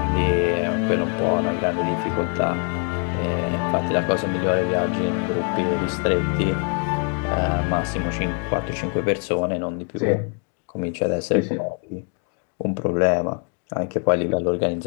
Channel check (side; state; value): right; quieter; 39.7 dB